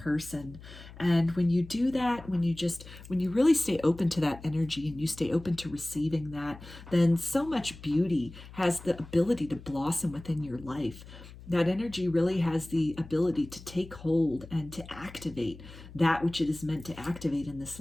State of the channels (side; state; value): left; noise; hum, 17 dB below the sound